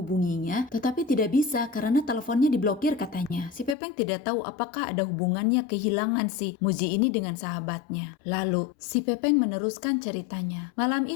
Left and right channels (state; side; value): drops out; right; at 3.8 s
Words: Tetapi tidak bisa karena teleponnya diblokir katanya. Si Pepeng tidak tahu apakah ada hubungannya kehilangan si Muzi ini dengan sahabatnya. Lalu si Pepeng meneruskan ceritanya. Malam